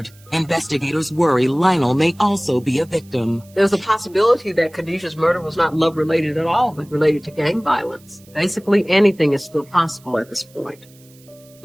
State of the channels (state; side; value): noise; right; hiss, 28 dB below the sound